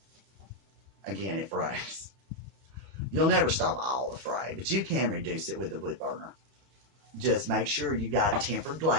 Again, it frays. You'll never stop all the fray, but you can reduce it with the wood burner. Just make sure you got tempered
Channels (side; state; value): left; late; 31 ms